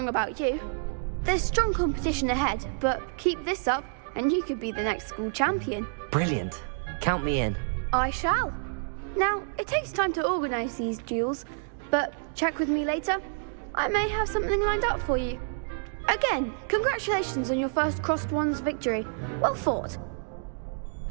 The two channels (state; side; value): silent; left; digital silence